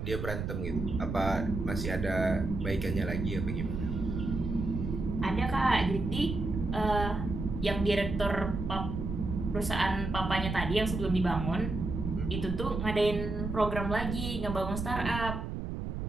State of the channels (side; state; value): right; noise; rumble, 4 dB below the sound